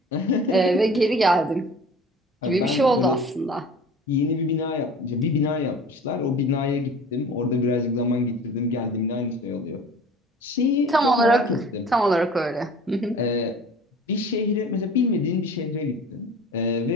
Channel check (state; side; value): normal; both; correlation 0.43